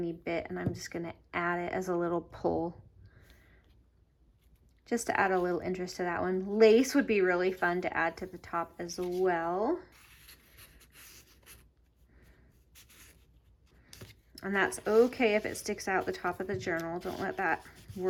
bit and I'm just gonna add it as a little pull, just to add a little interest to that one. Lace would be really fun to add to the top as well. And that's okay if it sticks out the top of the journal. Don't let that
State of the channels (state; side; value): identical; both; correlation 1.00